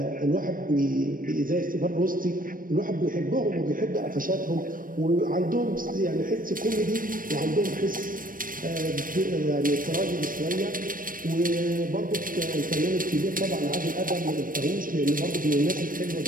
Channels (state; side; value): late; left; 0.40 ms